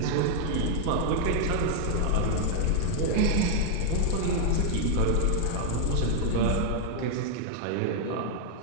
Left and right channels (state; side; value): different; both; correlation 0.00